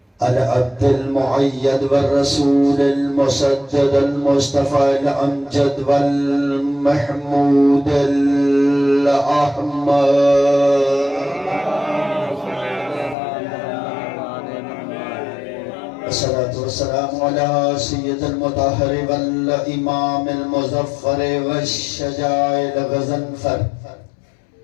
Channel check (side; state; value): right; drops out; at 13.2 s